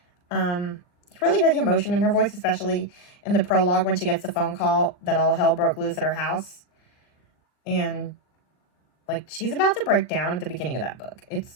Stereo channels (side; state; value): right; late; 39 ms